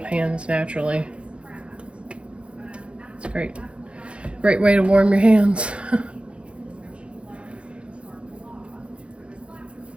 hands naturally. It's great. Great way to warm your hands.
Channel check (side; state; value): left; late; 0.059 ms